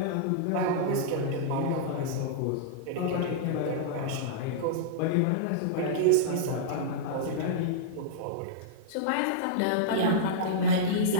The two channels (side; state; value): both; different; correlation -0.03